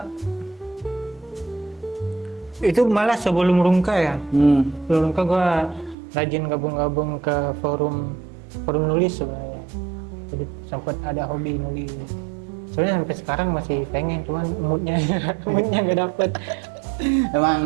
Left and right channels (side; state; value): left; drops out; at 6.0 s